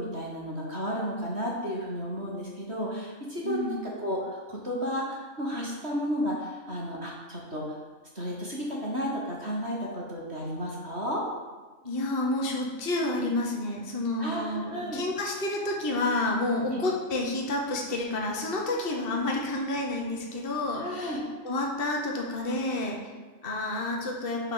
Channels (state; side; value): late; left; 2.7 ms